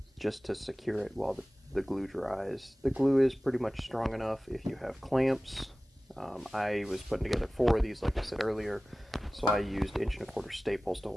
just to secure it while the glue dries. The glue is pretty much strong enough if you have clamps. I was putting together 4 of these like I said earlier, so I used 1 1/4" staples to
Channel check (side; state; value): both; normal; correlation 0.97